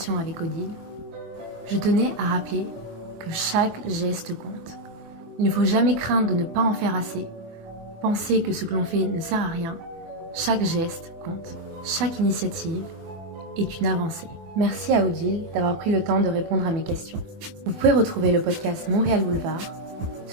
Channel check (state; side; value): late; left; 24 ms